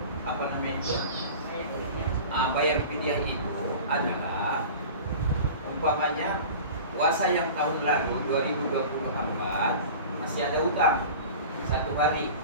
apa namanya itu bayar fidyah itu adalah umpamanya puasa yang tahun lalu 2024 masih ada utang 1 hari,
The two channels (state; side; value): inverted; both; correlation -0.37